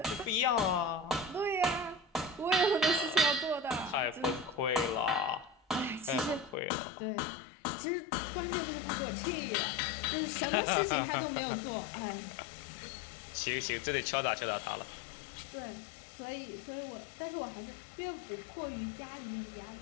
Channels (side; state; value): right; drops out; at 6.6 s